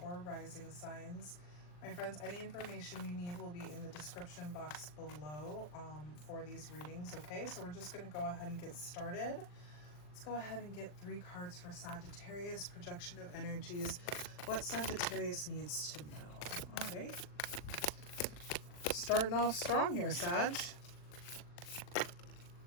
Rising signs. My friends, any information you need will be in the description box below for these readings, okay? So we're just going to go ahead and get started. Let's go ahead and get 3 cards for Sagittarius, projection of energies, what Sagittarius needs to know. All right. Starting off strong here, Sag.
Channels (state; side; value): late; right; 40 ms